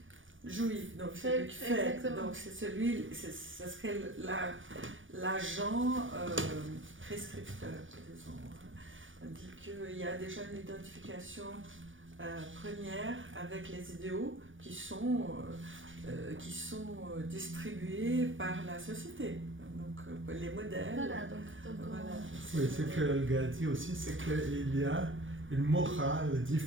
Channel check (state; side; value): late; left; 0.57 ms